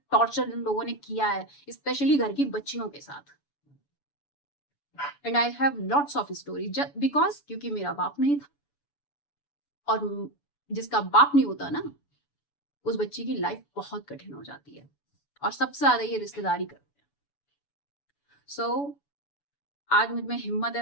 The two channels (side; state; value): right; late; 7.0 ms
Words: टॉर्चर इन लोगों ने किया है, स्पेशली घर की बच्चियों के साथ। And I have lots of story, because क्योंकि मेरा बाप नहीं था, और जिसका बाप नहीं होता ना, उस बच्ची की लाइफ बहुत कठिन हो जाती है, और सबसे ज्यादा ये रिश्तेदारी करते हैं। सो आज मुझ में हिम्मत है,